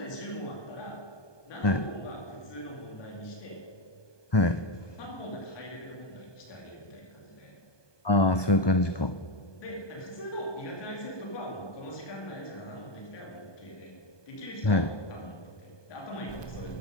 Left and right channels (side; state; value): right; late; 1.2 ms